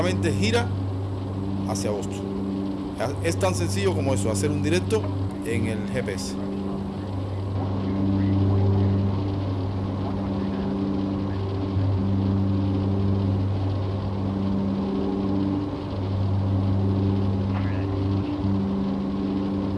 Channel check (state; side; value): identical; both; correlation 1.00